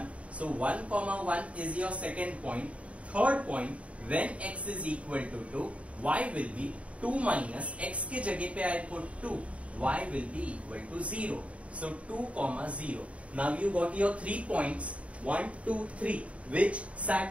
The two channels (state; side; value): late; left; 0.064 ms